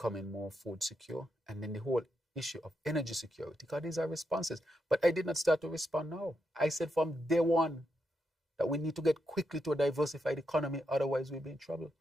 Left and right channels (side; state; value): both; normal; correlation 0.83